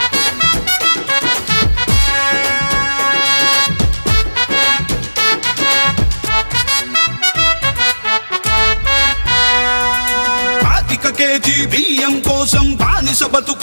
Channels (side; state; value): both; inverted; correlation -1.00